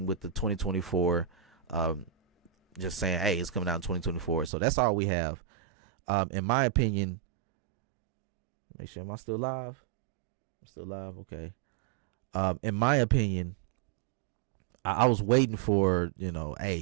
with the 2024. Just saying, hey, it's coming out in 2024. So that's all we have. In my opinion, make sure, am I still live? I'm still live. Okay. In my opinion, I was waiting for,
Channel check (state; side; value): drops out; left; at 4.5 s